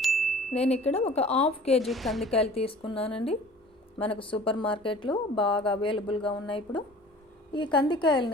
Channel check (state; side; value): normal; both; correlation 0.46